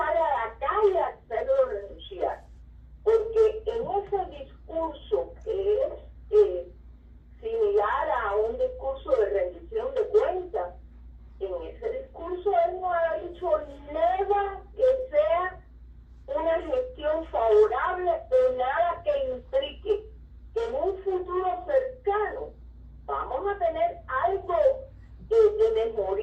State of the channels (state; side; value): identical; both; correlation 1.00